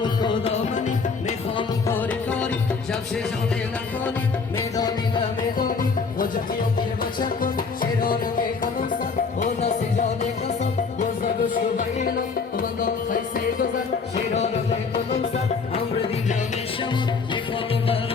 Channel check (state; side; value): quieter; right; 4.9 dB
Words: و خدا منی میخوام کاری کاری جمشه جانه نکنی میدانی نمیدانی خوجه خیام دیر بچه کن شیرانم ای کنم سن و نسی جانه کسان گوزه گوشو بایلان Şey rağmen komutsa, amre di jamin şamut,